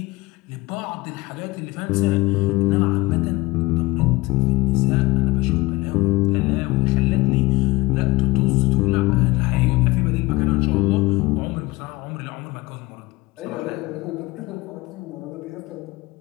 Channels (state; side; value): quieter; right; 21.0 dB